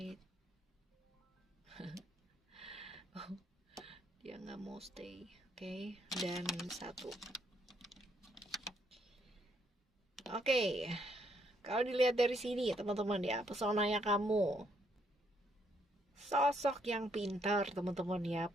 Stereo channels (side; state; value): both; normal; correlation 0.72